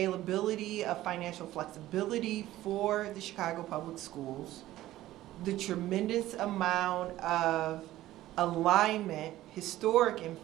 of financial flexibility for the Chicago Public Schools, the tremendous amount of alignment, historic in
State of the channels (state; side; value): quieter; left; 15.1 dB